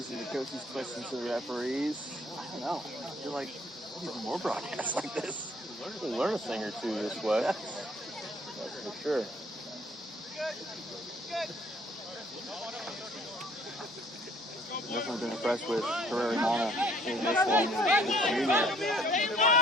and the coaches' questions to the referees. I don't know. I feel like we need more broadcasts like this. We'll learn a thing or two this way. That's for sure. Definitely been impressed with Herrera-Mana in this one.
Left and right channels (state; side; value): normal; both; correlation 0.59